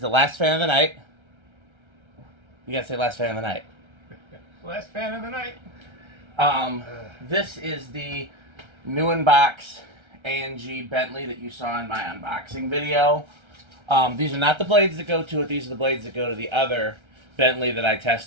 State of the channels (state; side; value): late; left; 1.3 ms